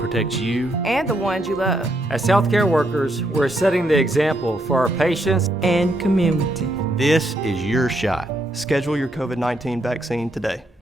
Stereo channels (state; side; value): normal; both; correlation 0.76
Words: you and the ones you love. As healthcare workers, we're setting the example for our patients and community. This is your shot. Schedule your COVID-19 vaccine today.